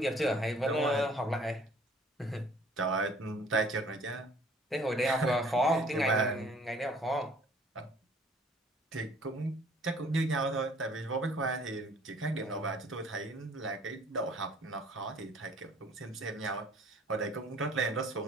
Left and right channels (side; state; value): both; normal; correlation 0.55